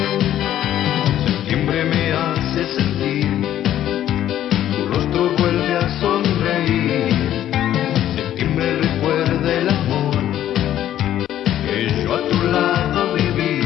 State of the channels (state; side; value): quieter; right; 11.9 dB